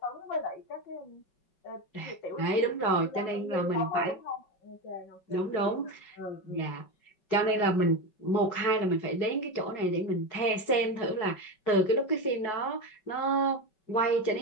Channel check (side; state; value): right; late; 5.3 ms